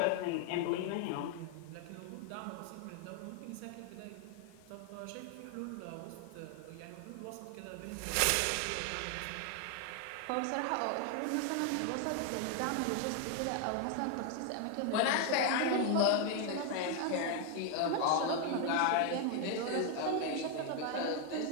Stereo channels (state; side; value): different; both; correlation 0.01